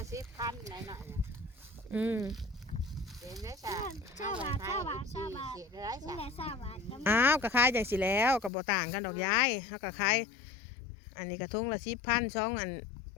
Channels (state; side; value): drops out; right; at 8.5 s